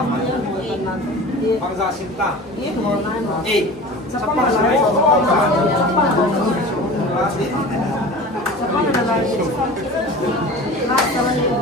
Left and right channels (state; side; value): normal; both; correlation 0.37